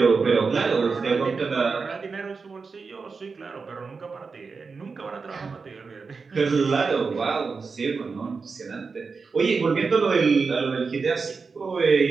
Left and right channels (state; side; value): quieter; left; 4.8 dB